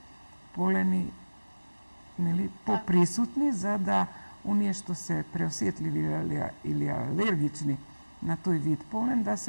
полени, нели, поприсутни, за да оние што се преосетливи или алергични на тој вид полен, да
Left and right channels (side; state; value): both; inverted; correlation -1.00